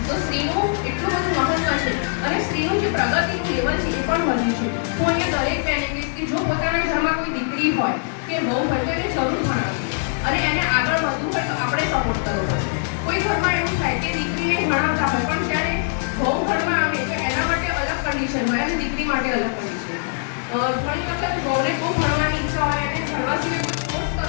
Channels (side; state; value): right; silent; digital silence